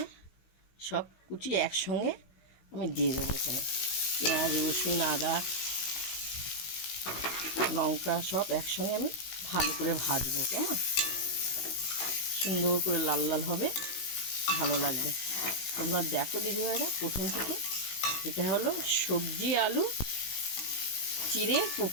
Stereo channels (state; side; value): late; right; 16 ms